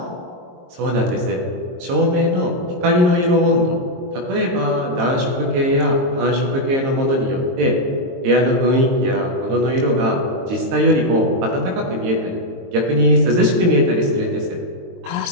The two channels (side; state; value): left; late; 22 ms